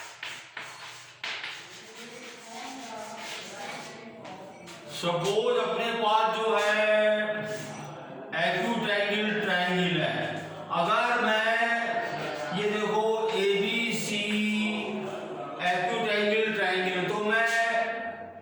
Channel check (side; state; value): both; identical; correlation 1.00